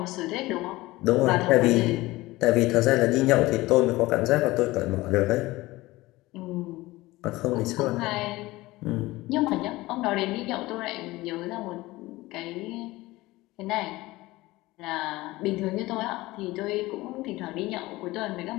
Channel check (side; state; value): right; quieter; 19.4 dB